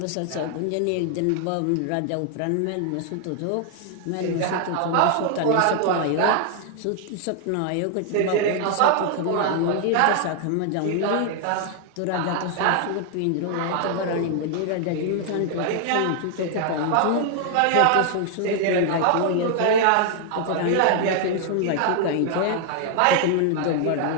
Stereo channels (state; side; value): different; both; correlation 0.00